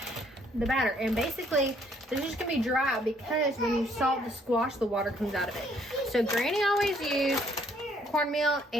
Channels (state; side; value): normal; both; correlation 0.65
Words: the batter, and basically this is just gonna be dry because when you salt the squash, the water comes out of it. So Granny always used cornmeal